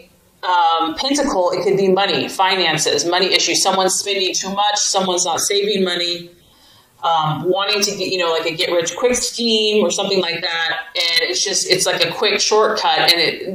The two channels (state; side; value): identical; both; correlation 1.00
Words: pentacle, it could be money, finances, money issues. Someone's spending too much. Someone's not saving money. Wanting to get, like a get rich quick scheme or something like that. And it's like a quick shortcut.